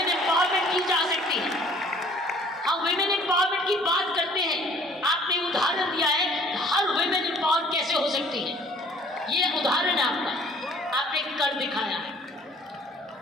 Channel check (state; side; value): normal; both; correlation 0.54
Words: एम्पावरमेंट की जा सकती है। हम विमेन एम्पावरमेंट की बात करते हैं, आपने उदाहरण दिया है हर विमेन एम्पावर कैसे हो सकती है। ये उदाहरण है आपका, आपने कर दिखाया है।